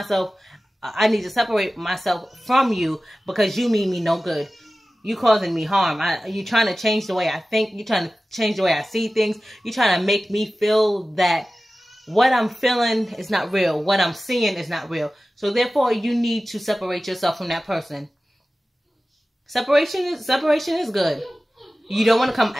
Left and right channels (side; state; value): both; normal; correlation 0.96